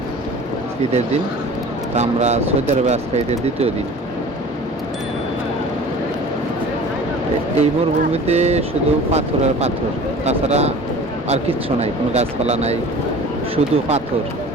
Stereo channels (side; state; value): both; normal; correlation 0.42